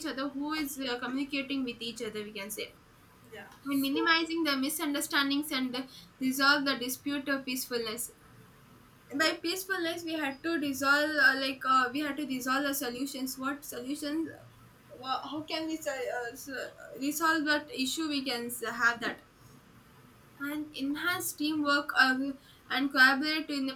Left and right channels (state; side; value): identical; both; correlation 1.00